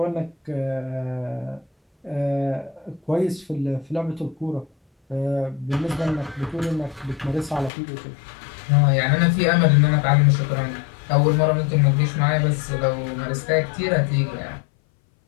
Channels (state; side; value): drops out; right; at 7.7 s